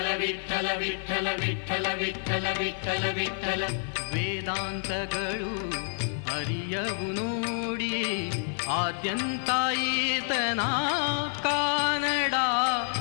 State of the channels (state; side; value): silent; right; 56 dB below the other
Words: ವಿಠಲ ವಿಠಲ ವಿಠಲ ವಿಠಲ ವಿಠಲ ವಿಠಲ. ವೇದಾಂತಗಳು ಅರಿಯವು ನೋಡಿ ಆದ್ಯಂತ ಈತನ ಕಾನಡ